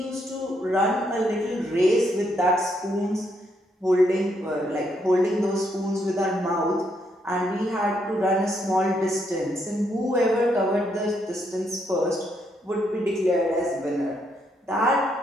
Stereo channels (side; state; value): both; normal; correlation 0.75